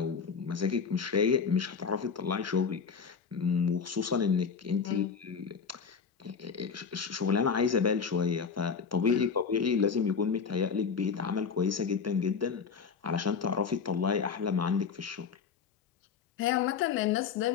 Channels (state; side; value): quieter; right; 6.0 dB